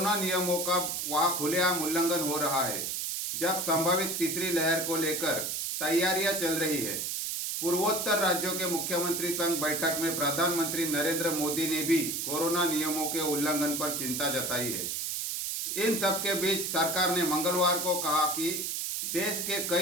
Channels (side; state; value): right; noise; hiss, 2 dB below the sound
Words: नियमों का वहां खुलेआम उल्लंघन हो रहा है, जब संभावित तीसरी लहर को लेकर तैयारियां चल रही है। पूर्वोत्तर राज्यों के मुख्यमंत्री संघ बैठक में प्रधानमंत्री नरेंद्र मोदी ने भी कोरोना नियमों के उल्लंघन पर चिंता जताई है। इन सब के बीच सरकार ने मंगलवार को कहा कि देश के